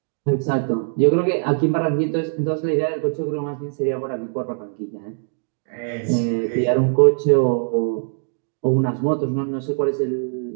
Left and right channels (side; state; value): left; silent; digital silence